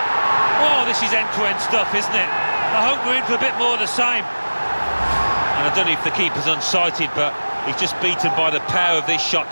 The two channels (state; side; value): inverted; both; correlation -1.00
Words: Oh, this is end-to-end stuff, isn't it? I hope we're in for a bit more of the same. And I don't know if the keeper's unsighted, but he's just beaten by the power of this shot